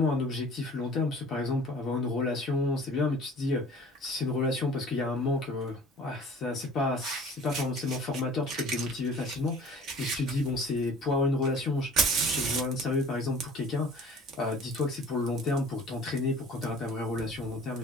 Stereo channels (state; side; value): normal; both; correlation 0.46